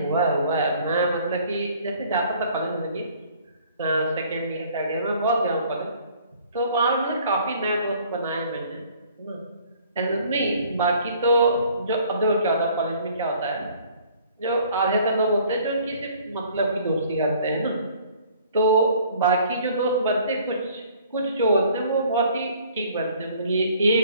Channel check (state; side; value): inverted; both; correlation -0.56